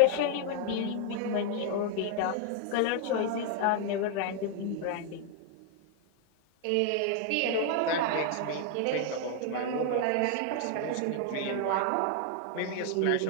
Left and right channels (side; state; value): both; different; correlation 0.00